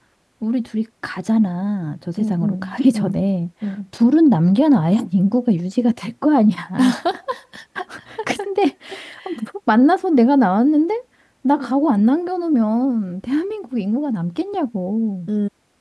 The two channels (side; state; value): both; identical; correlation 1.00